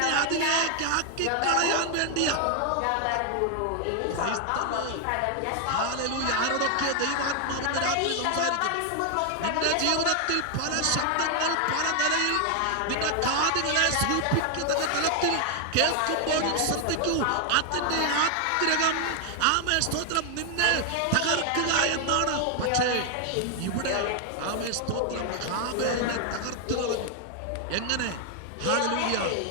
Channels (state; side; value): different; both; correlation 0.00